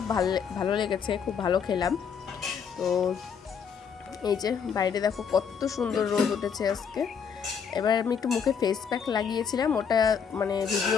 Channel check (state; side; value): quieter; right; 6.9 dB